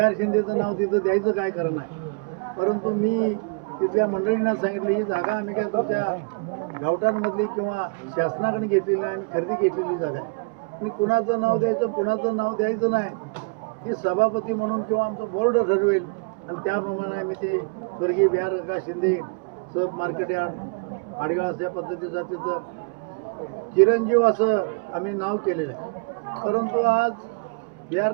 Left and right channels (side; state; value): left; quieter; 33.3 dB